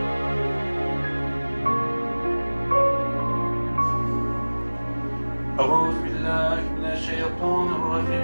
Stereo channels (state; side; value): inverted; both; correlation -1.00